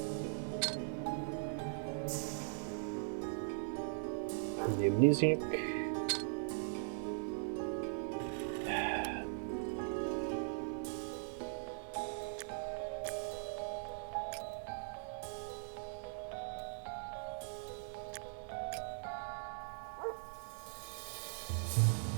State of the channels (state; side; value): silent; left; digital silence